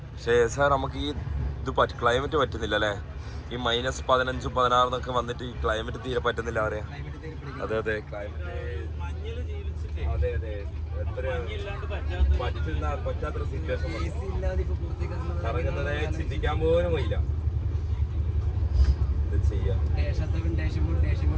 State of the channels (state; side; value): identical; both; correlation 1.00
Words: പക്ഷേ സാർ നമുക്ക് ഈ ഇത് ക്ലൈമറ്റ് പറ്റുന്നില്ല അല്ലേ? ഈ -15, 16 എന്നൊക്കെ വന്നിട്ട് ഈ ക്ലൈമറ്റ് തീരെ പറ്റുന്നില്ല അവരെ. അതെ ക്ലൈമറ്റ് അതെ പറ്റാത്തൊരു സിറ്റുവേഷൻ കറങ്ങുന്നതേ ചിന്തിക്കാൻ പോലും പോയില്ല. ഇത് ചെയ്യാം